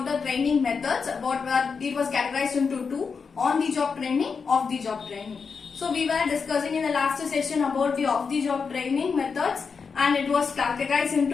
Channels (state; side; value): quieter; right; 5.5 dB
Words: the training methods. It was categorized into two: on-the-job training, off-the-job training. So we were discussing in the last session about the off-the-job training methods, and it was categorized